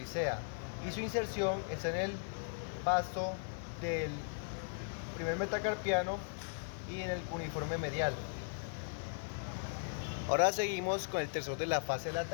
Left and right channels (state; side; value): silent; right; digital silence